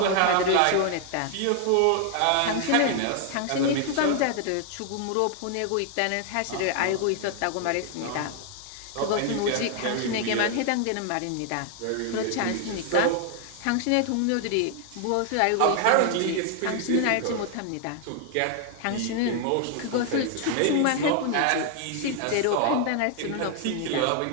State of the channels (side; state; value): both; different; correlation 0.00